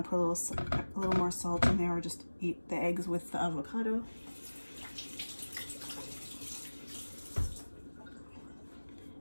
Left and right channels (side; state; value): both; inverted; correlation -1.00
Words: to put a little more salt in there, or just eat the eggs with the avocado.